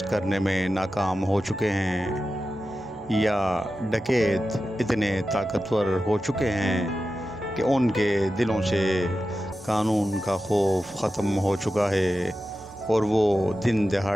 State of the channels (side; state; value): both; normal; correlation 0.92